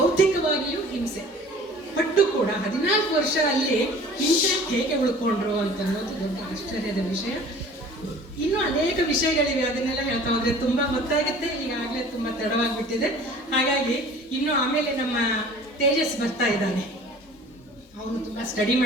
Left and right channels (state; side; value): normal; both; correlation 0.46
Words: ಹಿಂಸೆ ಪಟ್ಟು ಕೂಡ 14 ವರ್ಷ ಅಲ್ಲಿ ಹಿಂಸೆ ಹೇಗೆ ಉಳ್ಕೊಂಡ್ರು ಅಂತ ಅನ್ನೋದು ದೊಡ್ಡ ಆಶ್ಚರ್ಯದ ವಿಷಯ. ಇನ್ನೂ ಅನೇಕ ವಿಷಯಗಳಿವೆ, ಅದನ್ನೆಲ್ಲ ಹೇಳ್ತಾ ಹೋದ್ರೆ ತುಂಬಾ ಗೊತ್ತಾಗುತ್ತೆ. ಈಗಾಗಲೇ ತುಂಬಾ ತಡವಾಗಿಬಿಟ್ಟಿದೆ. ಹಾಗಾಗಿ ಇನ್ನು ಆಮೇಲೆ ನಮ್ಮ ತೇಜಸ್ ಬರ್ತಾ ಇದ್ದಾನೆ, ಅವನು ತುಂಬಾ ಸ್ಟಡಿ